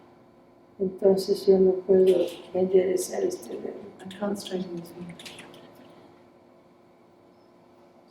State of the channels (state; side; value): identical; both; correlation 1.00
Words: Entonces yo no puedo enderezar este dedo. I can't straighten this finger.